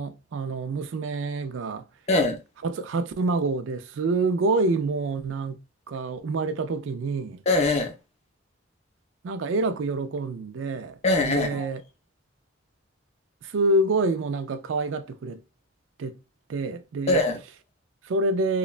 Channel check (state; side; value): normal; both; correlation 0.08